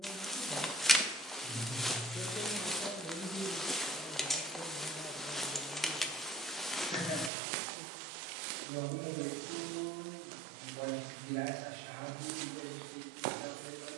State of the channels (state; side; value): drops out; left; at 7.3 s